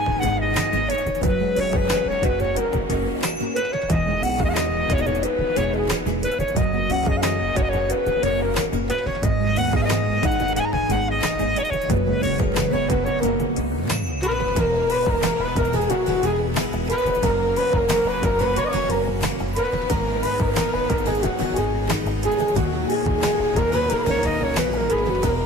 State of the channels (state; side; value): normal; both; correlation 0.55